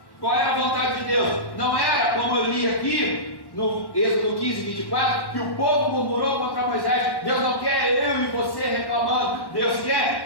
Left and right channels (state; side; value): late; right; 1.1 ms